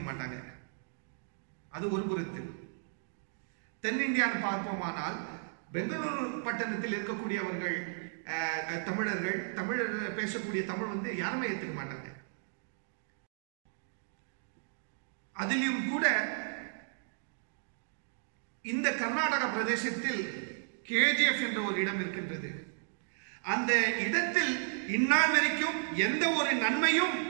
மாட்டாங்க. அது ஒரு புறத்தில். தென்னிந்தியான்னு பார்ப்போமானால், பெங்களூரு பட்டணத்தில் இருக்கக்கூடியவர்கள் தமிழர்கள், தமிழர் பேசக்கூடிய தமிழ் யாருமே ஏற்றுக்க மாட்டாங்க. அதிலும் கூட இந்த கர்நாடக பிரதேசத்தில் கேஜிஎஃப் என்ற ஒரு இடம் இருக்கின்றது. அந்த இடத்தில் இந்நாள் வரைக்கும் எந்த ஒரு நன்மையும்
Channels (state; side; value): silent; left; digital silence